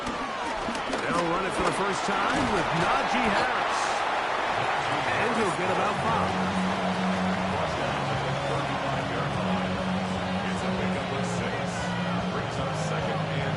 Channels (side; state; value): both; identical; correlation 1.00